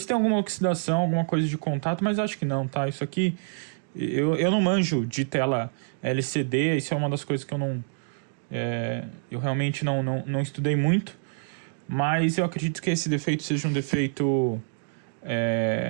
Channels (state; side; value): silent; left; digital silence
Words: tem alguma oxidação, alguma coisa de contato, mas acho que não, tá? Isso aqui, eu não manjo de tela LCD, isso é uma das coisas que eu realmente não estudei muito, mas eu acredito que esse defeito seja um defeito